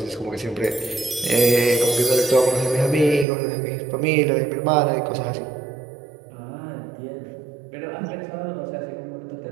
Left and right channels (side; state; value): left; drops out; at 3.2 s